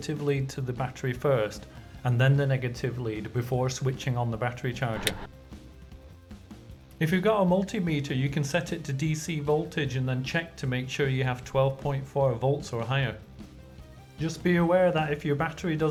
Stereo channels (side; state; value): both; identical; correlation 1.00